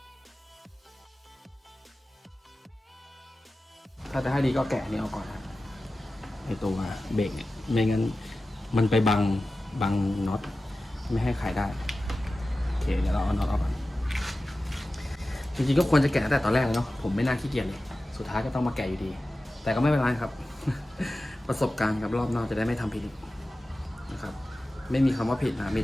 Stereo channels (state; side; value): normal; both; correlation 0.95